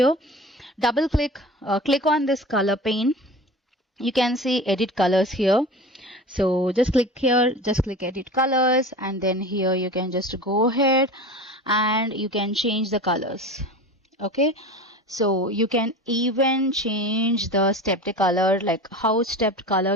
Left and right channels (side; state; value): both; normal; correlation 0.34